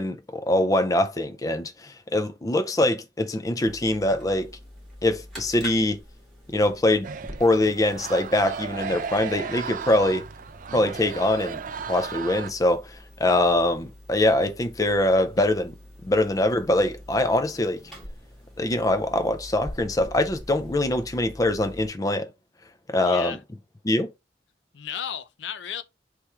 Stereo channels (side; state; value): both; normal; correlation 0.60